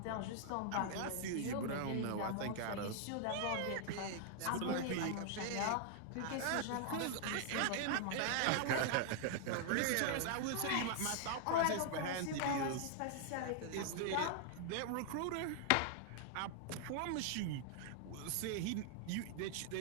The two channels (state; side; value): different; both; correlation 0.00